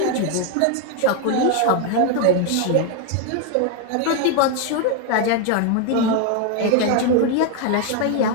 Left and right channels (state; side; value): different; both; correlation 0.01